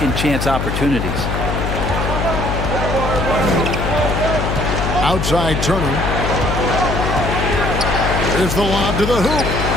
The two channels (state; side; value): noise; left; hum, 2 dB below the sound